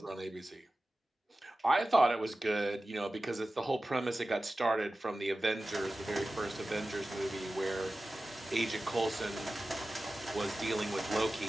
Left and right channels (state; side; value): normal; both; correlation 0.95